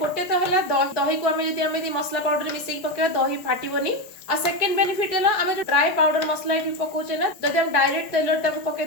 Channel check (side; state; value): right; late; 4.7 ms